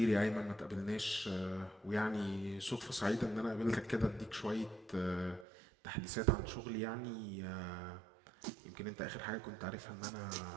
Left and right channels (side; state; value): left; drops out; at 5.5 s